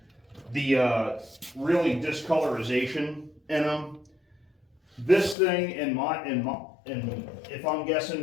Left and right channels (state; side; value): drops out; right; at 5.4 s